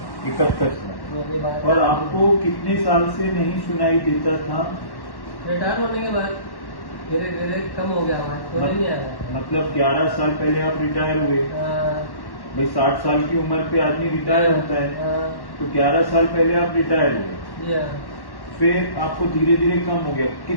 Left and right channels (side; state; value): right; late; 1.1 ms